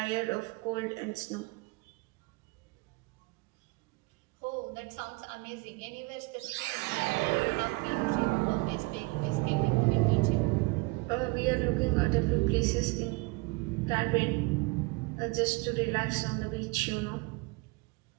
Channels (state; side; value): quieter; left; 26.1 dB